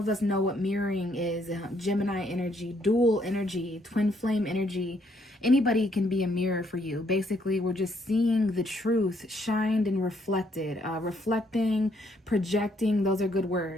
us know what mirroring is. Gemini energy, dual energy, twin flame energy. Anybody can be a mirror for you. Basically, we're just seeing the truth shined and reflected. Reflecting, projecting, those are good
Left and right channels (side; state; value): both; normal; correlation 0.70